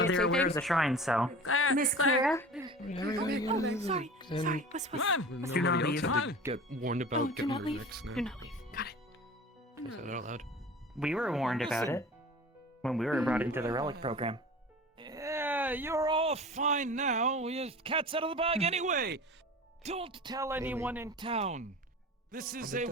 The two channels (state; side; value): normal; both; correlation 0.38